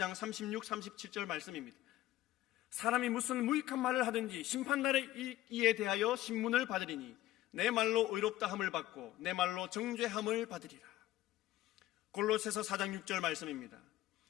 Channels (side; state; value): right; quieter; 15.2 dB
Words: 36, 37절 말씀입니다. 사람이 무슨 무익한 말을 하든지 심판날에 이에 대하여 신문을 받으리니 내 말로 의롭다 함을 받고 내 말로 정죄함을 받으리라. 골로새서 4장 6절 말씀입니다.